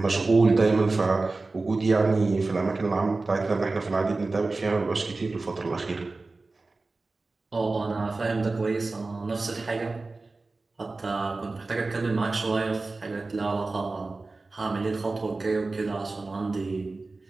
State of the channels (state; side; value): quieter; left; 3.5 dB